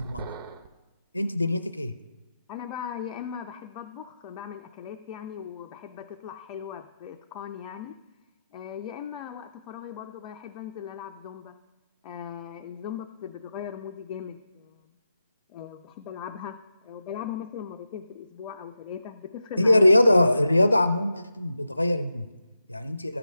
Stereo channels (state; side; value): inverted; both; correlation -0.89